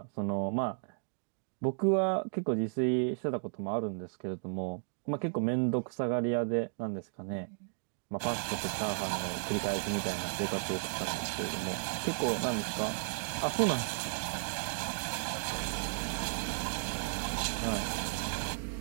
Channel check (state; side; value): silent; left; digital silence